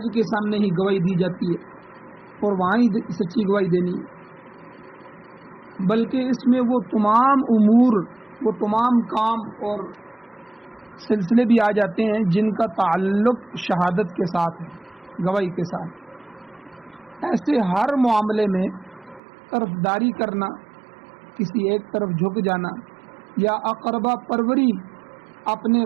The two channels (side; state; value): left; drops out; at 19.2 s